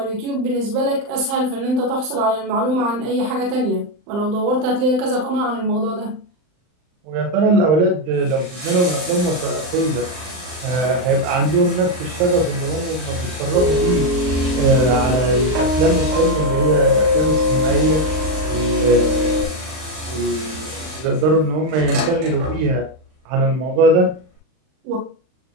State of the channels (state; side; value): late; left; 39 ms